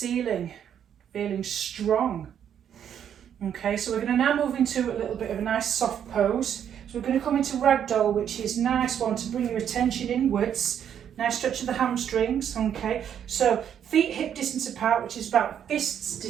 feeling strong. Okay, so we're going to now move into a little bit of a nice soft pose. So we're going to come into ragdoll, which is a nice one to bring your attention inwards. Nice stretch of the hamstrings. Okay, so feet hip distance apart, which is about fists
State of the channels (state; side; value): quieter; left; 9.1 dB